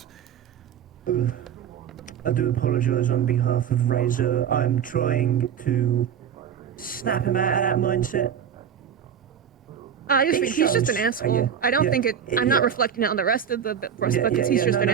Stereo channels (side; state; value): left; quieter; 8.3 dB